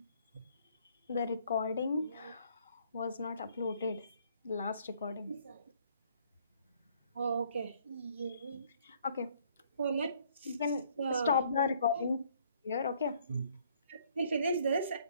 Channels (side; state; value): both; inverted; correlation -0.62